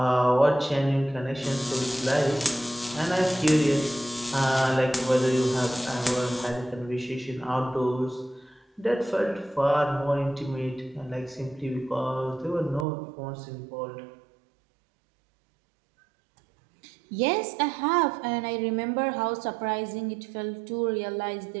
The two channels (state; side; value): drops out; left; at 12.9 s